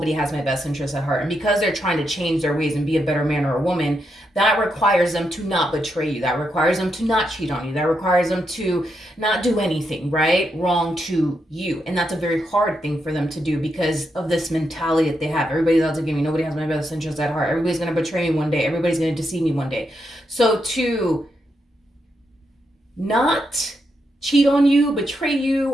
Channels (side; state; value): both; normal; correlation 0.82